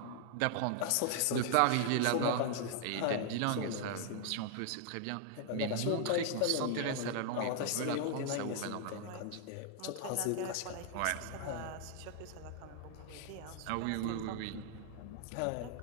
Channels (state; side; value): different; both; correlation 0.00